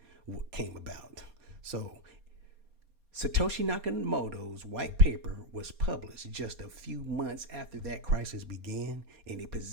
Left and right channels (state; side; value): late; left; 4.2 ms